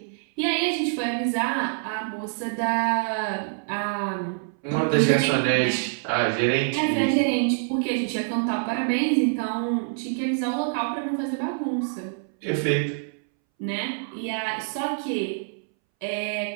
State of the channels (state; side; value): silent; left; 61 dB below the other